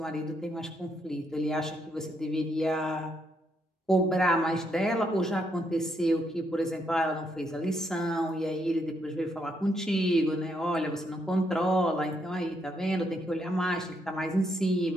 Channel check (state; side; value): normal; both; correlation 0.76